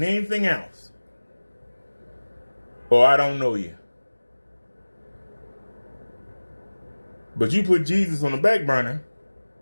anything else, or I don't know you. But you put Jesus on the back burner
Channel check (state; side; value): inverted; both; correlation -1.00